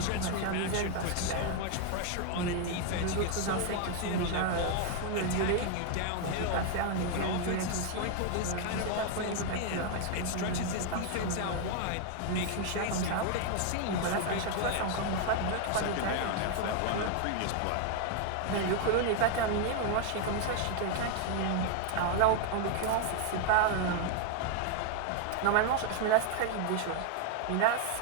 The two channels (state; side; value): different; both; correlation 0.00